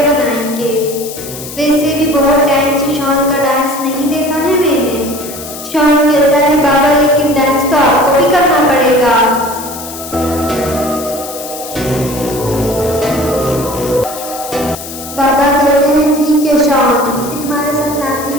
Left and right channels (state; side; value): noise; left; hiss, 11 dB below the sound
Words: बनाएंगे। वैसे भी बहुत टाइम से शॉन का डांस नहीं देखा है मैंने। शॉन कहता है बाबा लेकिन डांस तो आपको भी करना पड़ेगा। बाबा कहते हैं ठीक है शॉन, मैं तुम्हारे साथ रात